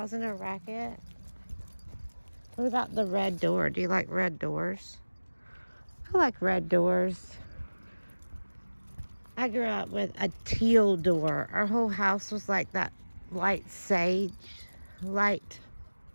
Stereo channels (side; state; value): both; inverted; correlation -1.00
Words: a racket? What about the red door? Do you like red doors? I like red doors. I grew up with a teal door. Our whole house was like that light sage, light,